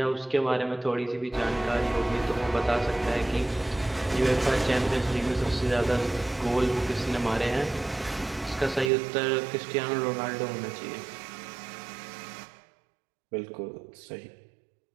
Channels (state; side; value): drops out; left; at 8.9 s